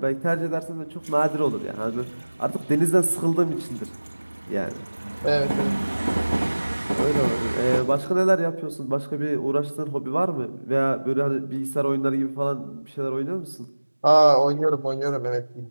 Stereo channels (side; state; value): both; inverted; correlation -1.00